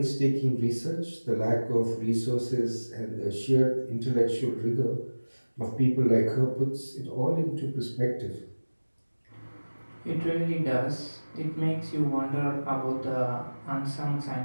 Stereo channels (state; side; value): inverted; both; correlation -1.00